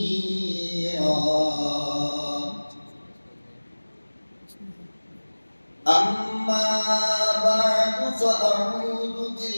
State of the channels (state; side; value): inverted; both; correlation -1.00